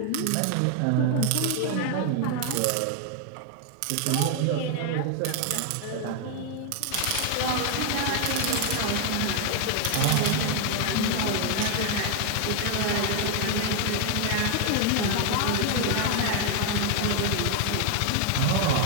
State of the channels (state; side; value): different; both; correlation 0.00